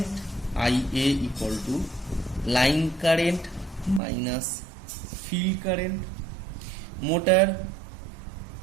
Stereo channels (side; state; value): left; drops out; at 4.0 s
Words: Ia equal to line current minus field current, motor